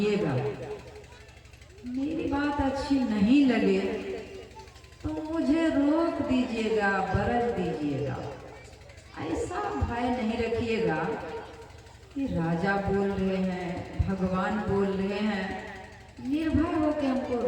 मेरी बात अच्छी नहीं लगे तो मुझे रोक दीजिएगा, बरस दीजिएगा। ऐसा भय नहीं रखिएगा कि राजा बोल रहे हैं, भगवान बोल रहे हैं, निर्भय हो के हमको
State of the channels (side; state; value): both; identical; correlation 1.00